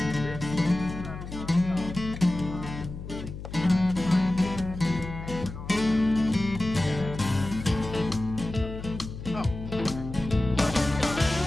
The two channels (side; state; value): left; noise; hum, 10 dB below the sound